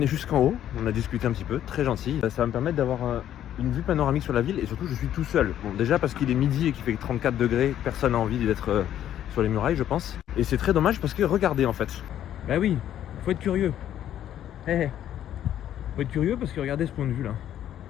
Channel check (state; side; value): quieter; right; 11.1 dB